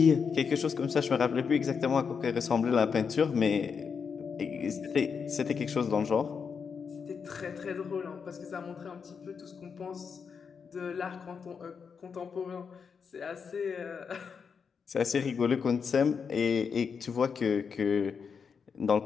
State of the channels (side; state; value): right; quieter; 6.1 dB